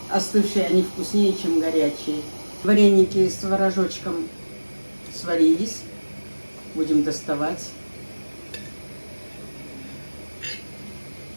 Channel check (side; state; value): both; inverted; correlation -1.00